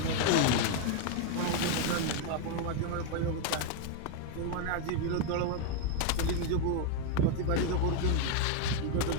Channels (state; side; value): different; both; correlation 0.01